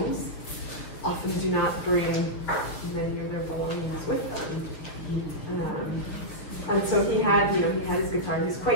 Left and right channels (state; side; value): late; right; 7.0 ms